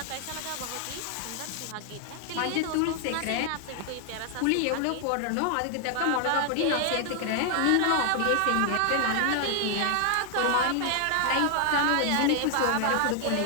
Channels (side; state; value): both; different; correlation 0.00